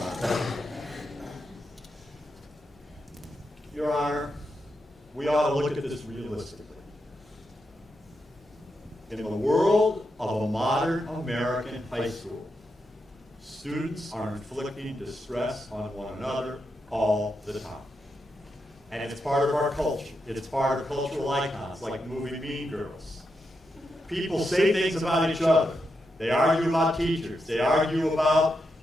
Your Honor, we ought to look at this realistically. In the world of a modern American high school, students are inflicting distress on one another all the time. And it's part of our culture. It's part of cultural icons like the movie Mean Girls. People say things about each other. They argue about teachers. They argue about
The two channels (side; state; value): both; normal; correlation 0.85